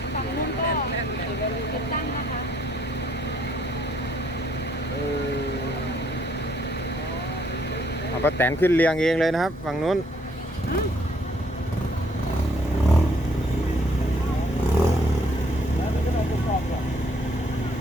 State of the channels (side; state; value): both; normal; correlation 0.67